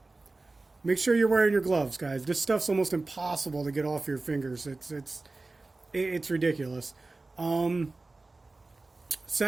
Make sure you're wearing your gloves, guys. This stuff's almost impossible to get off your fingers. It's ridiculous.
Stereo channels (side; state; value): left; quieter; 3.3 dB